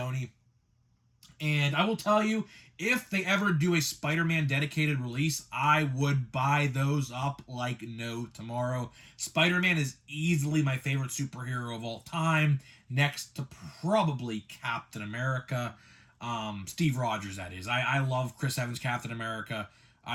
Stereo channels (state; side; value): identical; both; correlation 1.00